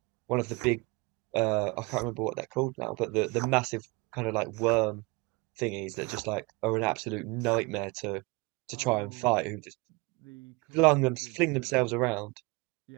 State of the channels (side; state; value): left; quieter; 26.7 dB